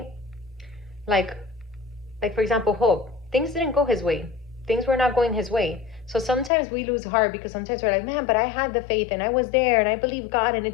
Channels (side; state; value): right; drops out; at 6.5 s